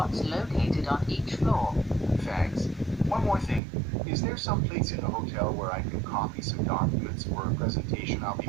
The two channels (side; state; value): left; drops out; at 3.6 s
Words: located on each floor. Thanks. One more thing. Is there some place in the hotel where I can copy some documents for a presentation I'll be